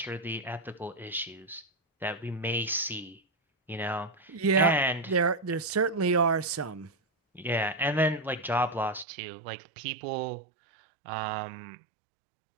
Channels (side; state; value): left; drops out; at 9.1 s